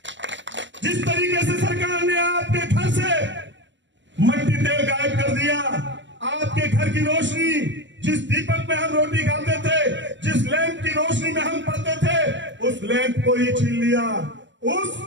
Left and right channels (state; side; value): late; left; 0.54 ms